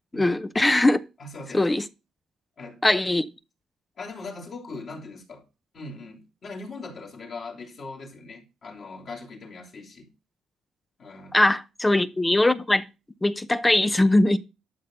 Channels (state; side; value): normal; both; correlation 0.98